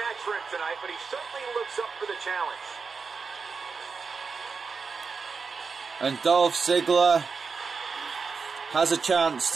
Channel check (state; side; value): quieter; left; 5.1 dB